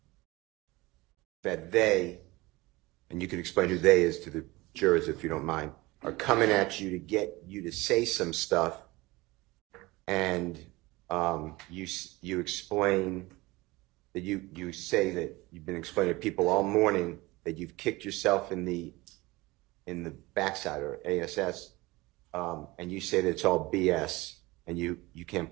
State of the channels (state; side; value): quieter; left; 21.5 dB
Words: that they, and you can explain who they is to the jurors if you don't mind, are coming at you to get you to say some stuff, and you explain that you say that you've been explaining to people all morning that you've kicked yourself in the backside or ASS, and you say that it's all BS and you can't